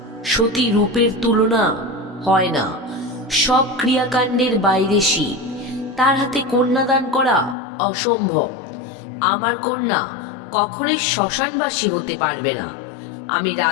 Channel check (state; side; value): drops out; right; at 7.6 s